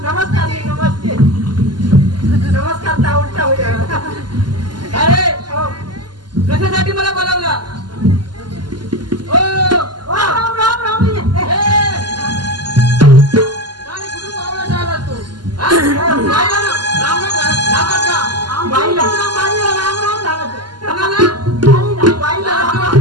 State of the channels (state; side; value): late; left; 0.71 ms